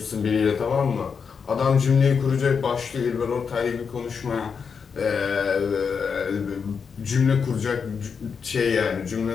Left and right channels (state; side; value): quieter; right; 6.0 dB